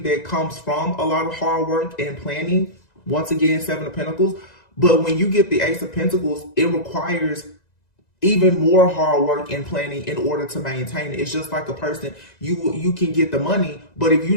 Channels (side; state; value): right; late; 1.9 ms